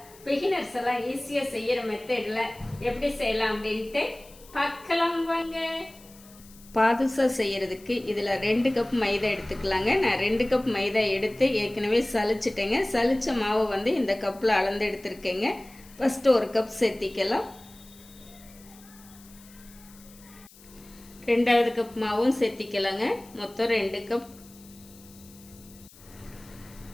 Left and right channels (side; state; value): left; noise; hiss, 23 dB below the sound